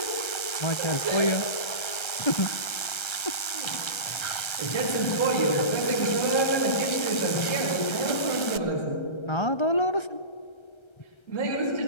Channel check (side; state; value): right; late; 1.3 ms